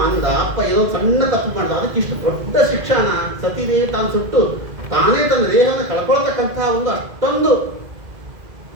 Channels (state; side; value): late; left; 2.0 ms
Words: ಅಂದ, ಅಪ್ಪ ಏನೋ ಸಣ್ಣ ತಪ್ಪು ಮಾಡ್ದ, ಅದಕ್ಕೆ ಇಷ್ಟು ದೊಡ್ಡ ಶಿಕ್ಷಣ ಸತಿದೇವಿ ತಾನು ಸುಟ್ಟು ತಾನೇ ತನ್ನ ದೇಹವನ್ನು ಕಳ್ಕೊಳ್ತಕ್ಕಂತಹ ಒಂದು ಅಷ್ಟೊಂದು